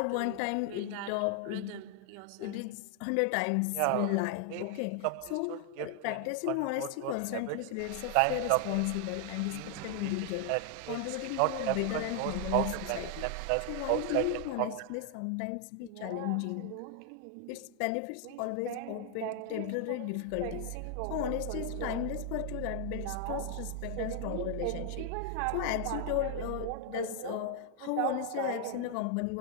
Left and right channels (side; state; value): both; different; correlation 0.00